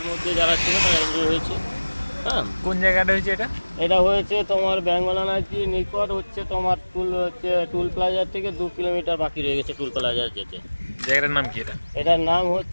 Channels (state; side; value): inverted; both; correlation -1.00